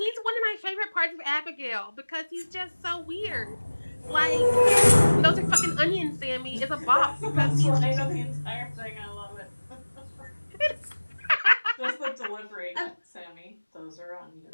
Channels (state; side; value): inverted; both; correlation -1.00